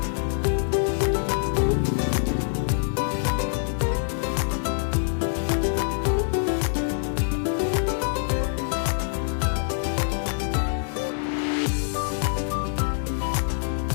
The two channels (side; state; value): right; silent; 62 dB below the other